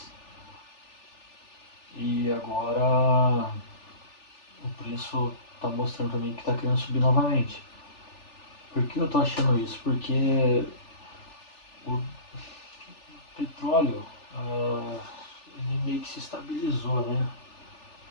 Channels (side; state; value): right; late; 3.4 ms